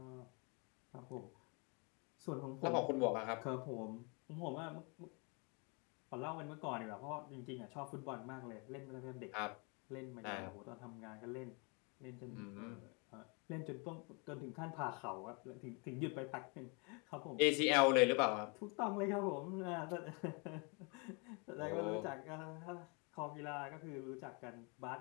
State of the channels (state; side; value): quieter; right; 32.7 dB